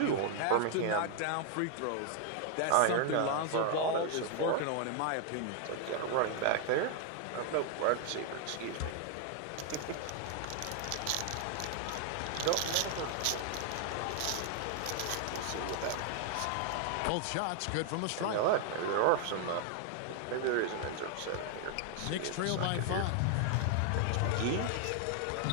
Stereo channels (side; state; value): both; different; correlation 0.00